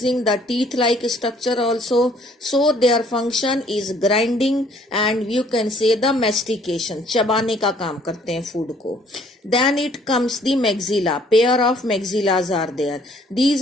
the teeth-like structure also. So their function is grinding and you can say the mastication. चबाने का काम करते हैं food को. Then it comes the maxilla. Pair of maxillas are there. These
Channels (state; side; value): normal; both; correlation 0.61